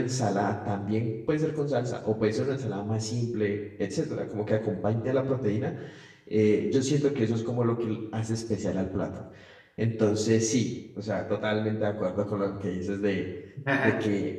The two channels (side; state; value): both; identical; correlation 1.00